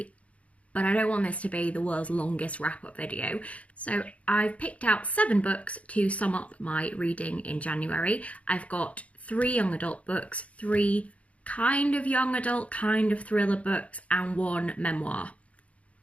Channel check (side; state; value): right; late; 0.065 ms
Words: but I don't want this to be the world's longest wrap-up video. So I've picked out 7 books to sum up my reading in January. I've got 3 young adult books, 3 kind of young adult, kind of thriller books, and 1 memoir.